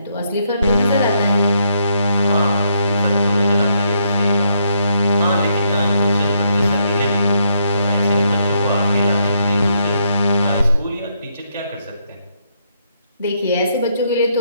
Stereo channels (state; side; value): inverted; both; correlation -0.75